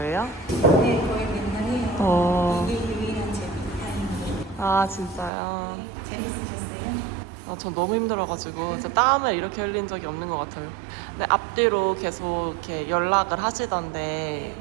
네, 거의 맨날이에요. 이게 유일한 제 타임이에요. 아 진짜요? 재밌으셨어요? 전 너무 힘들어가지고 진짜 땀을 이렇게 흘린 적이 없는 것 같아요. 근데 앞뒤로 계속 이렇게 연락을 하시던데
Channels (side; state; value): left; drops out; at 5.3 s